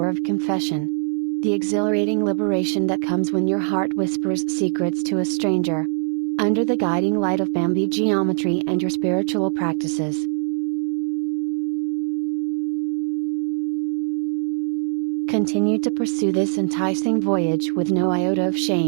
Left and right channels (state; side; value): silent; left; 55 dB below the other